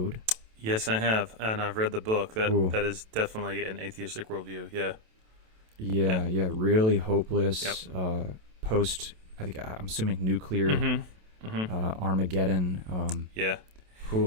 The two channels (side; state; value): left; late; 27 ms